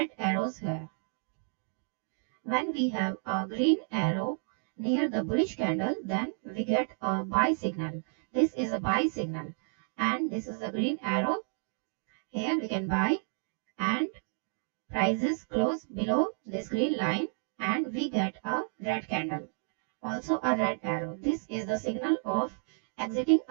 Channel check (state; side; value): silent; left; 57 dB below the other